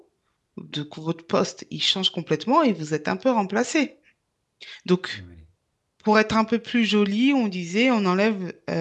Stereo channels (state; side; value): identical; both; correlation 1.00